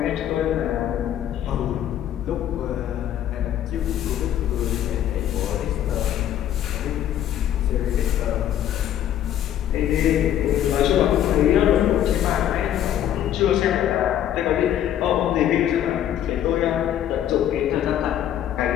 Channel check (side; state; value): right; quieter; 11.1 dB